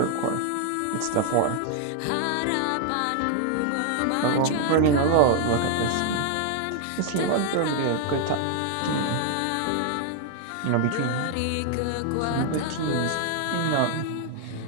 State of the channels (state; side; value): different; both; correlation 0.00